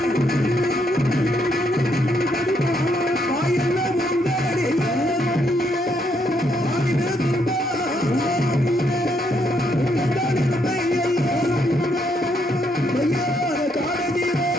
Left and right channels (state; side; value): normal; both; correlation 0.74